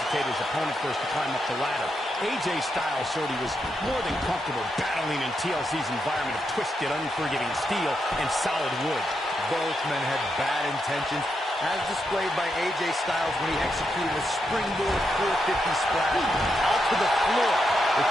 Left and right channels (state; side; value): normal; both; correlation 0.83